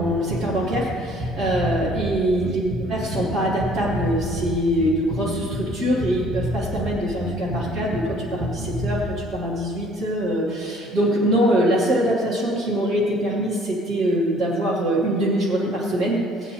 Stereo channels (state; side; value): normal; both; correlation 0.57